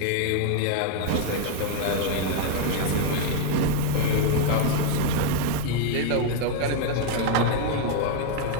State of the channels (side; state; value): both; different; correlation 0.00